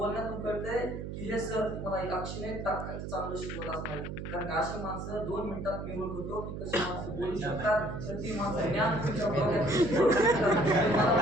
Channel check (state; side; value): noise; right; hum, 7 dB below the sound